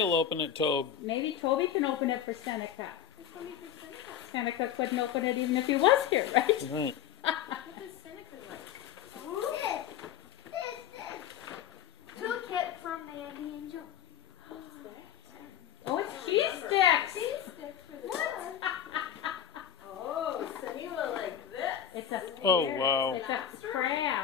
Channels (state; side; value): quieter; right; 9.6 dB